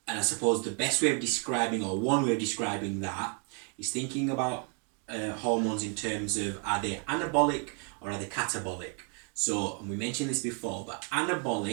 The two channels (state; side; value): quieter; left; 39.5 dB